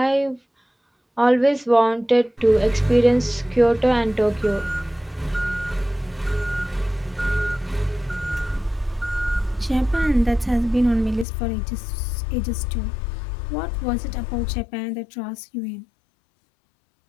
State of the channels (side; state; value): right; drops out; at 11.2 s